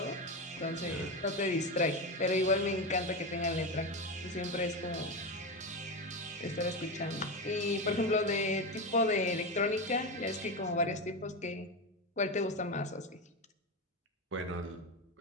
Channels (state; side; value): normal; both; correlation 0.17